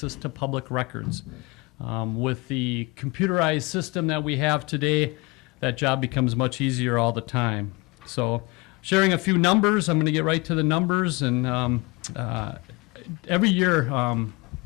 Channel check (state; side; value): quieter; right; 25.5 dB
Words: to public records. With the computerized system that we have today, that job becomes much easier all the time. So, sharing a few numbers, I'm going to get right to the numbers. And every year,